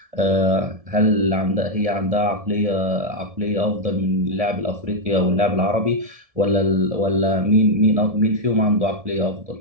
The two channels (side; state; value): left; late; 1.7 ms